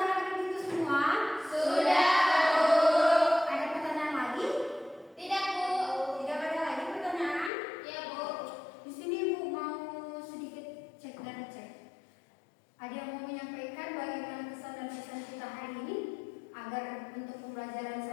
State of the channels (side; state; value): right; drops out; at 7.5 s